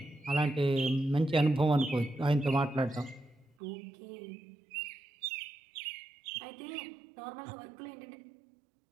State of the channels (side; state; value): left; drops out; at 3.5 s